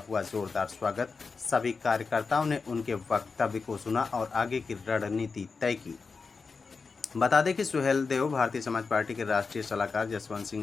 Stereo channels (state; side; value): quieter; right; 4.7 dB